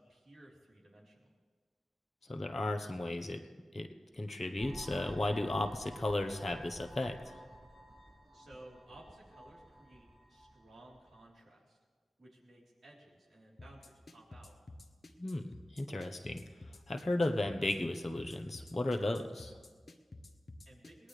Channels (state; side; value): normal; both; correlation 0.95